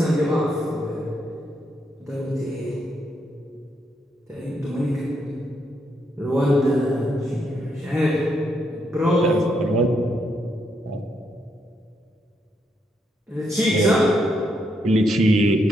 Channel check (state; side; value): normal; both; correlation 0.78